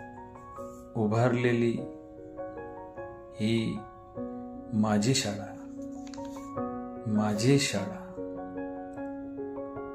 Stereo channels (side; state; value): both; identical; correlation 1.00